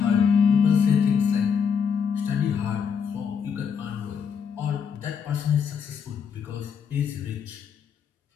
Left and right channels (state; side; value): quieter; right; 6.8 dB